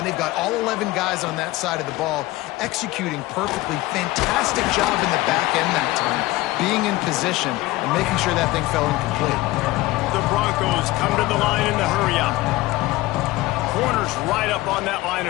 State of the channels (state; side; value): quieter; right; 18.6 dB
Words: They've got all 11 guys on that side of the ball executing perfectly. Fantastic job in the back end that time, being in position and making sure that thing fell incomplete. The Broncos come to the line in the hurry-up. Corners right up on that line